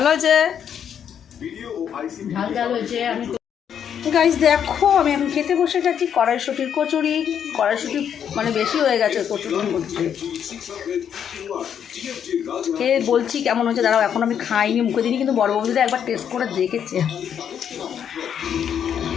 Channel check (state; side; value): quieter; right; 8.5 dB